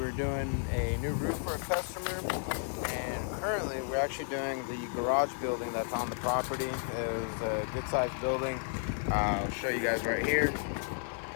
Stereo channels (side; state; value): right; silent; 56 dB below the other